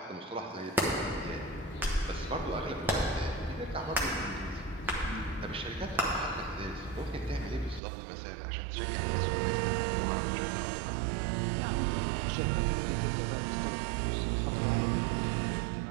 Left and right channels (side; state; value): left; drops out; at 7.8 s